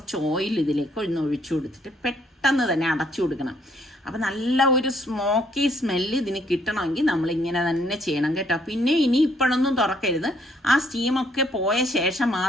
ഓയിൽ ഇതിലേക്ക് ഒഴിച്ചു കൊടുത്തിട്ട് പെട്ടെന്ന് തന്നെ അടച്ചു കൊടുക്കണം. അപ്പം നല്ല ഒരു സ്മോക്കി സ്മെല്ല് ഇതിന് കിട്ടണമെങ്കിൽ നമ്മളിങ്ങനെ തന്നെ ചെയ്യണം കേട്ടോ. പിന്നെ ഇനി ഇപ്പോഴൊന്നും തുറക്കരുത്, ആ സ്റ്റീമൊക്കെ പോയ ശേഷം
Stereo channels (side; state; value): both; normal; correlation 0.68